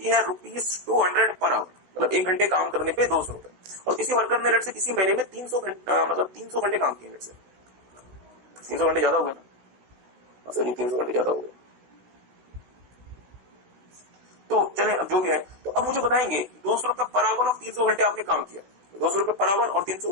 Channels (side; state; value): left; late; 16 ms